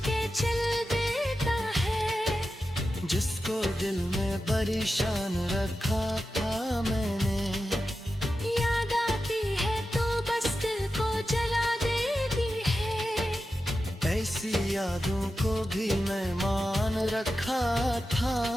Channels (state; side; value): normal; both; correlation 0.92